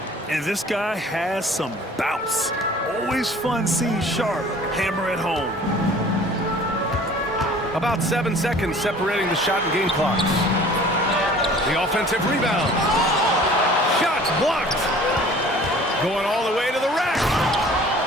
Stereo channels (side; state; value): both; normal; correlation 0.48